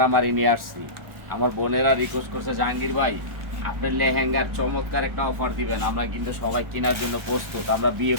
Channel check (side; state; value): left; late; 1.1 ms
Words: নিয়ে আসছি। আমার বোনেরা রিকোয়েস্ট করছে, জাহাঙ্গীর ভাই আপনার লেহেঙ্গার চমৎকার একটা অফার দিবেন, আমরা কিন্তু সবাই কেনার জন্য প্রস্তুত, আমরা বিয়ে